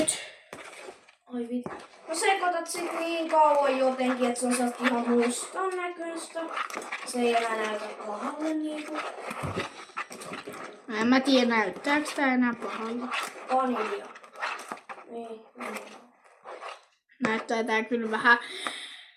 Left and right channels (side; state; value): both; identical; correlation 1.00